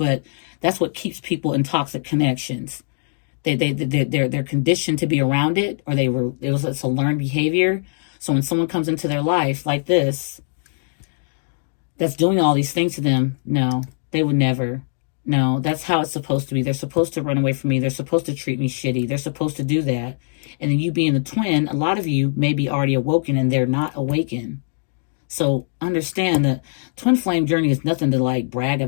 that's what keeps people in toxic connections. They're conditioned to be around it, or it's a learned behavior. So when someone comes into their life like this, that's doing all these things to them, no, they would never. No, that's how it's supposed to be. They're supposed to run away from me. They're supposed to treat me shitty. They're supposed to do that. And then you being the twin, a lot of you may be already awoken and they're not awakened. So understand that twin flame journey is nothing to like brag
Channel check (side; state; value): right; silent; digital silence